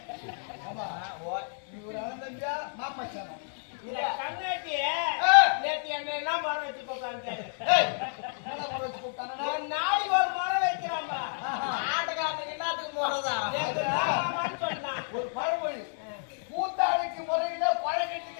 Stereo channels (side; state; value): right; silent; digital silence